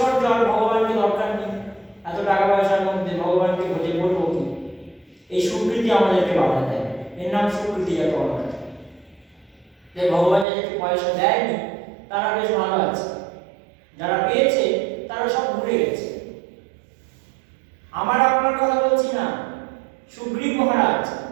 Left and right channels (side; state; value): left; drops out; at 10.5 s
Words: আর ভগবানকে দরকার নেই। এত টাকা পয়সার মধ্যে ভগবানকে ভোজে করবো কি? এই সুকৃতি আমাদেরকে বাধা দেয়, এর নাম সুকৃতিজাত অনর্থ। যে ভগবান যাদেরকে পয়সা দেয়নি তারা বেশ ভালো আছে, যারা পেয়েছে তারা সব ভুলে গেছে। আমার আপনার কথা বলছি না, সুগ্রীব মহারাজ